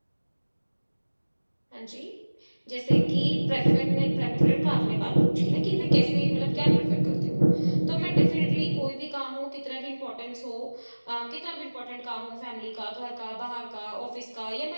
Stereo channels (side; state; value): both; inverted; correlation -1.00